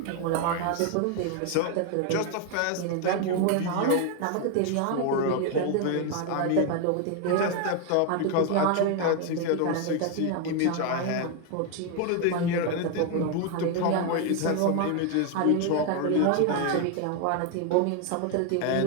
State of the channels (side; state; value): both; different; correlation 0.01